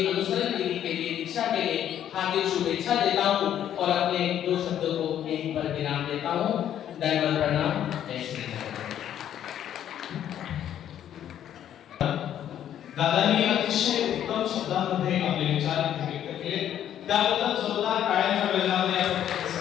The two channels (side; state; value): right; quieter; 10.5 dB